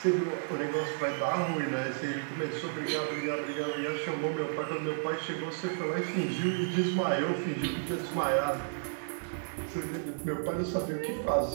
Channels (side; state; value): left; silent; digital silence